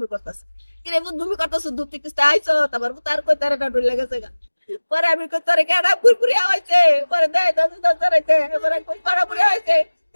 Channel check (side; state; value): both; inverted; correlation -1.00